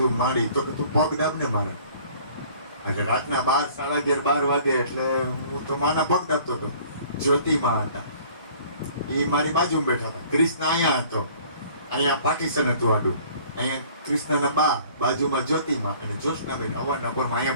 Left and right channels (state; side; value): inverted; both; correlation -0.53